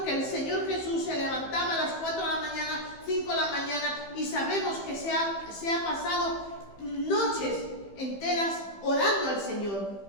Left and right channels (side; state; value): right; late; 15 ms